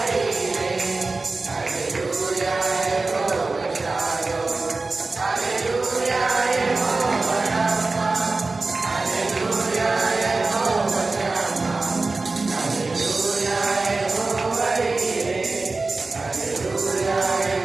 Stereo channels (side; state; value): left; quieter; 3.6 dB